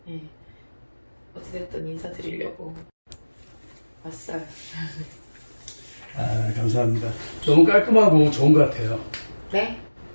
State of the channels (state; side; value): inverted; both; correlation -1.00